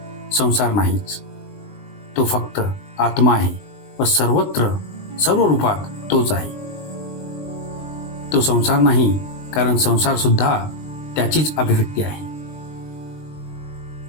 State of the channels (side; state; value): right; late; 20 ms